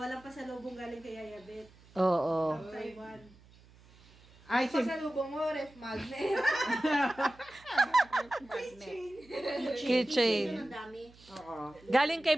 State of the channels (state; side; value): noise; right; hum, 25 dB below the sound